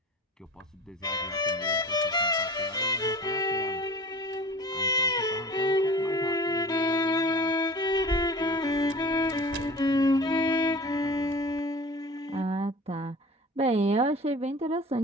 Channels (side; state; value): both; normal; correlation 0.39